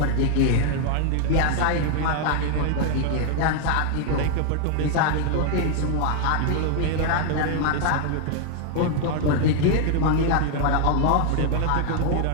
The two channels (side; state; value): both; different; correlation 0.00